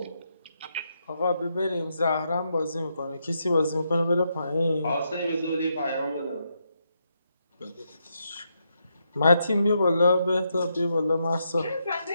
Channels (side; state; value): both; inverted; correlation -0.81